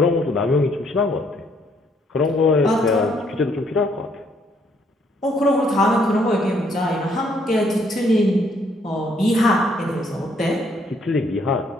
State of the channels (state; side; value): normal; both; correlation 0.68